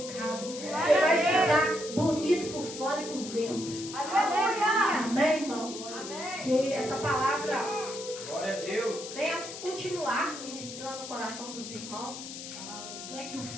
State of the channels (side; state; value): left; noise; hiss, 10 dB below the sound